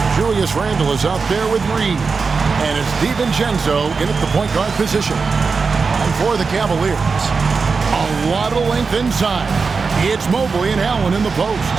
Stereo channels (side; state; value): left; quieter; 4.8 dB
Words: Julius Randle is out there with Reed. And it's DiVincenzo in at the point guard position. And for the Cavaliers, a lot of length inside. It's Mobley and Allen in the post.